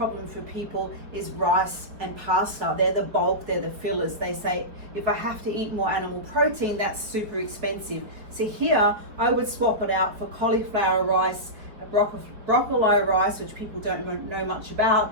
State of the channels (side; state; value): left; late; 4.9 ms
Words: for people is rice and pasta. They're the bulk, they're the fillers. They say, if I have to eat more animal protein, that's super expensive. So here, I would swap it out for cauliflower rice, broccoli rice, which people don't know much